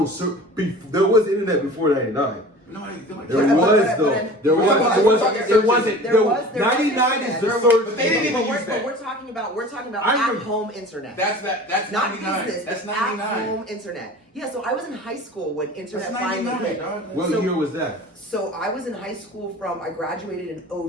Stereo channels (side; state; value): both; normal; correlation 0.40